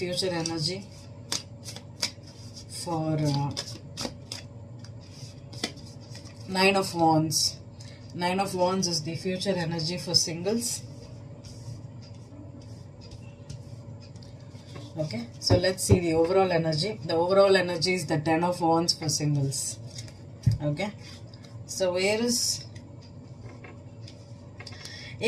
energy for 9 of Wands? 9 of Wands is the future energy for singles. Okay, so let's see the overall energy. The overall energy is the 10 of Wands for singles. Okay, so Aries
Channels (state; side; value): identical; both; correlation 1.00